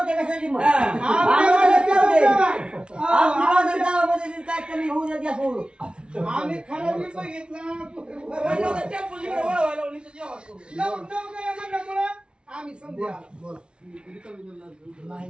काय कमी होऊ द्या आम्ही खरं बघितलं आम्ही समजा नाही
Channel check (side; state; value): left; late; 0.057 ms